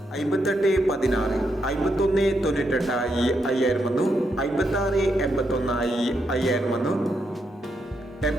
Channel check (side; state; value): both; normal; correlation 0.80